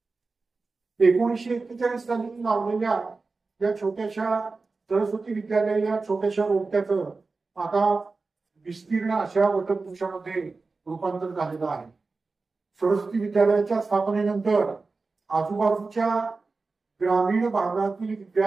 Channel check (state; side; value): quieter; left; 4.0 dB